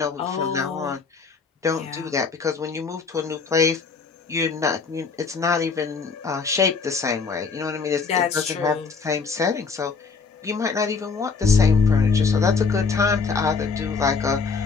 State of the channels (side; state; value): right; quieter; 5.0 dB